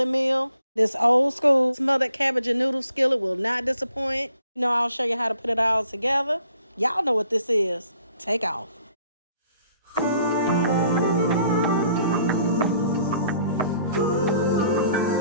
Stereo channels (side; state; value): both; inverted; correlation -0.63